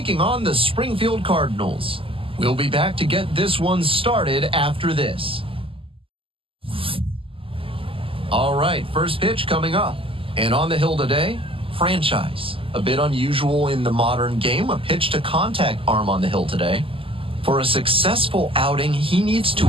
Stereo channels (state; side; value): late; left; 0.26 ms